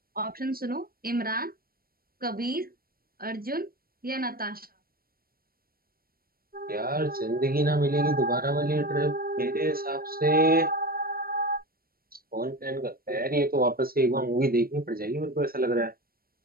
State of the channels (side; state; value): left; late; 0.43 ms